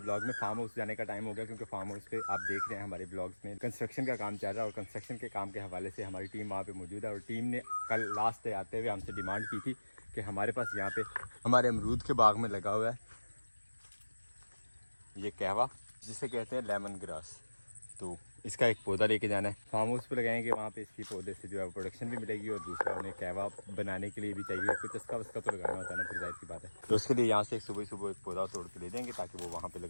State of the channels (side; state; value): both; inverted; correlation -1.00